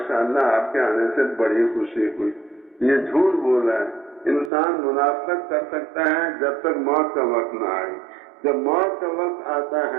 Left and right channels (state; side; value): drops out; left; at 4.5 s